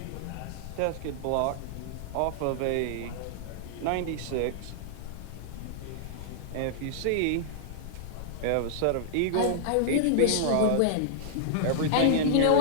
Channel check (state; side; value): different; both; correlation -0.01